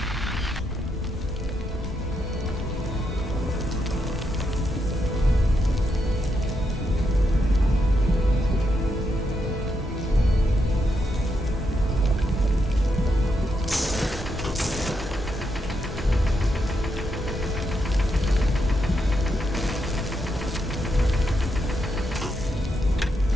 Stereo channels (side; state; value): both; normal; correlation 0.81